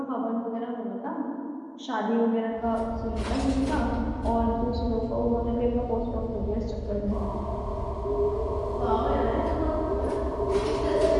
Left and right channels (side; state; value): both; identical; correlation 1.00